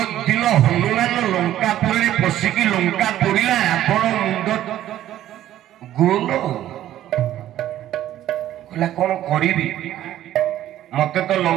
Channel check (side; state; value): left; quieter; 12.7 dB